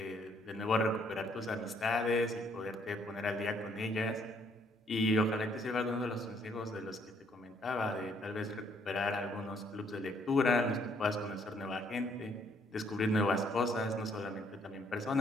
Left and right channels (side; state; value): both; normal; correlation 0.67